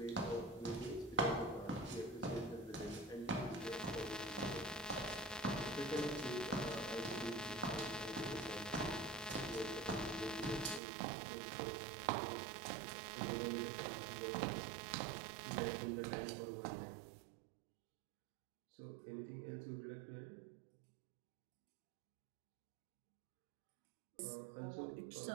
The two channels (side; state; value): left; drops out; at 10.8 s